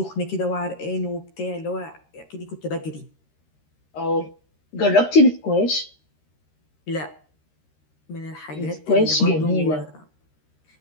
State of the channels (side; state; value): right; late; 13 ms